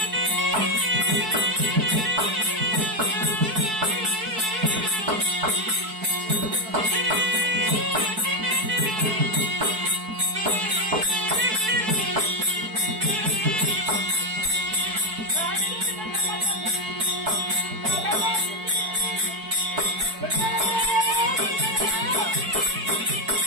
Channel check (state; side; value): late; left; 4.6 ms